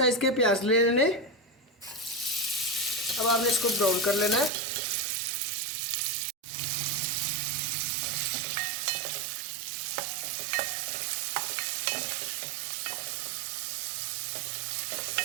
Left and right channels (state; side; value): drops out; left; at 4.5 s